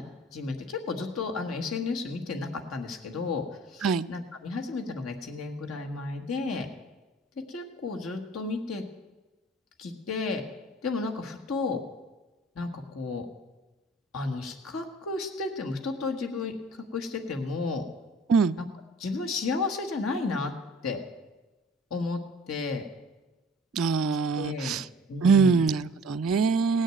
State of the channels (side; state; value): both; normal; correlation 0.50